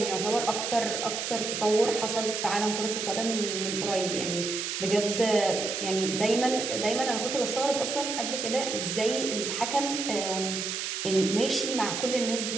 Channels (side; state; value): right; noise; hiss, 3 dB below the sound